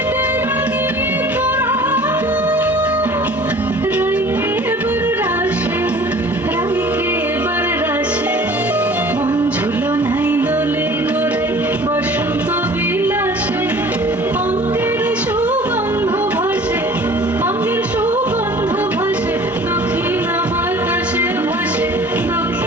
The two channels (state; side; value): normal; both; correlation 0.47